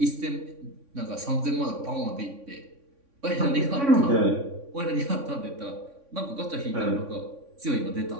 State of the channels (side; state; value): left; late; 3.6 ms